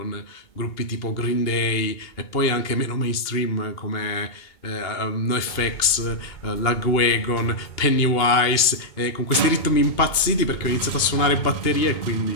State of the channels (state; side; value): late; right; 2.8 ms